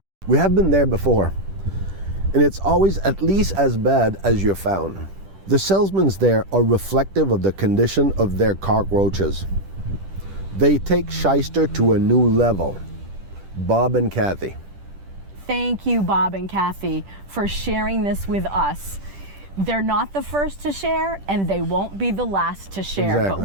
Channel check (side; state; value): left; late; 10 ms